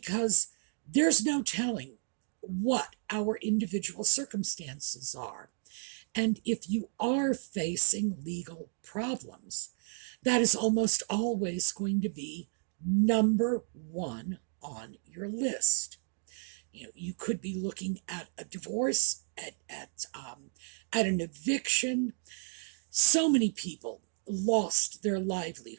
there's no telling what our individual circumstances are. And if you are facing legal problems, that is almost always going to be number one on your list. You could be looking at a divorce, at an eviction. So many people lost their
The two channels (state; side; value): silent; left; 56 dB below the other